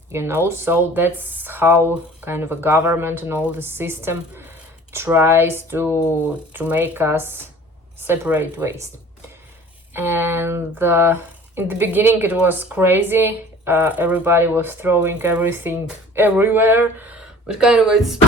you know. So that's how kind of a government and all the system tries to make us separate waste. And in the beginning it was crazy, everybody was throwing everything everywhere, but kind of it's,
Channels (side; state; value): both; normal; correlation 0.47